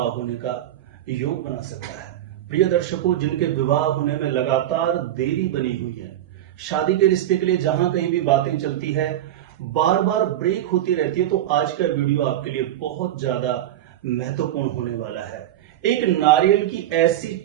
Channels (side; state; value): left; quieter; 12.5 dB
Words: होने का योग बना सकता है। प्रिय दर्शकों, जिनके विवाह होने में लगातार देरी बनी हुई है, शादी के रिश्ते के लिए जहां कहीं भी बातें चलती है, बार बार ब्रेक होती रहती है, तो आज का वीडियो आपके लिए बहुत ज्यादा महत्वपूर्ण होने वाला है। एक नारियल की ऐसी